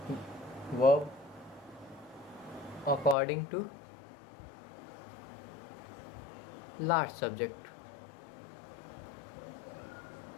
verb according to last subject.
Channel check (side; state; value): right; drops out; at 3.2 s